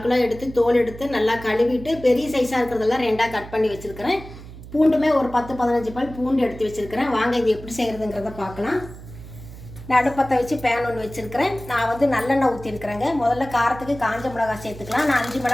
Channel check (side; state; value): right; noise; hum, 15 dB below the sound